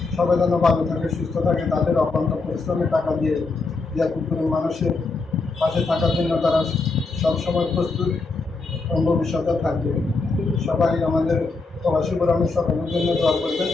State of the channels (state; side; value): quieter; right; 3.9 dB